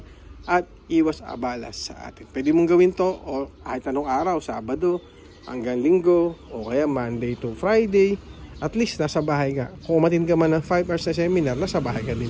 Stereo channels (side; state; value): both; identical; correlation 1.00